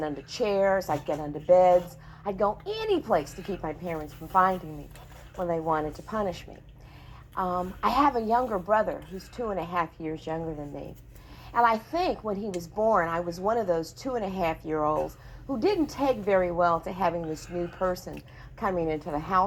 under chairs, I'd get under beds, I'd go any place to keep my parents from finding me when they wanted to punish me. I have a younger brother who's 2.5 years younger than me. And I think when he was born, I was one of those 2.5-year-olds who didn't take very well to having this new person coming into the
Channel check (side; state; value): both; identical; correlation 1.00